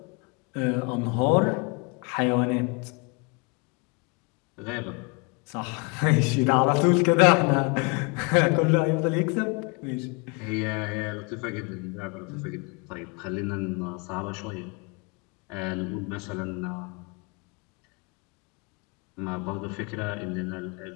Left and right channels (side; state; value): right; quieter; 31.3 dB